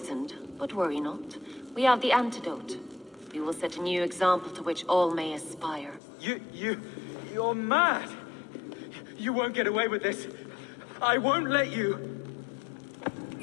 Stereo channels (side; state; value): right; drops out; at 6.0 s